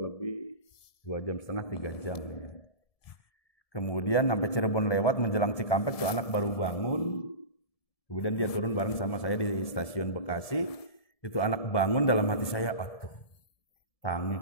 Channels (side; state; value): right; late; 1.7 ms